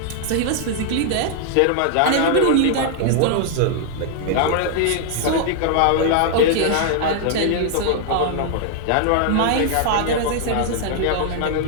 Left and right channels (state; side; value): different; both; correlation 0.00